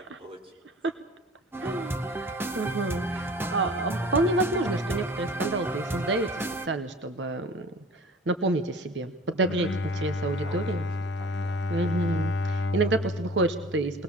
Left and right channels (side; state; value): both; normal; correlation 0.45